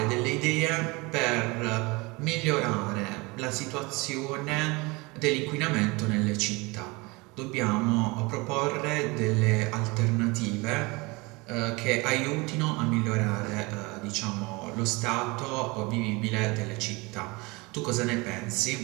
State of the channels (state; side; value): quieter; left; 25.2 dB